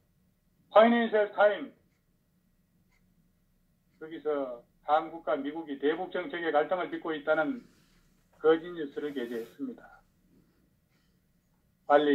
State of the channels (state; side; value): identical; both; correlation 1.00